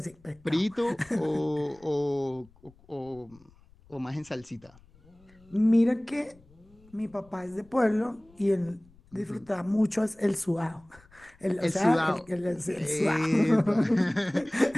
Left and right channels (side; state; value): left; noise; rumble, 28 dB below the sound